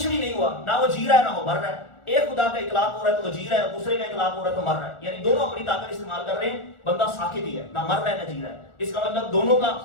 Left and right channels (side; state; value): right; late; 1.4 ms